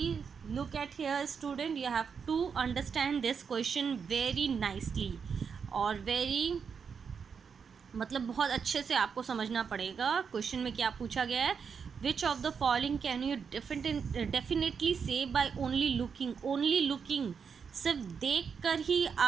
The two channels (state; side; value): quieter; left; 6.3 dB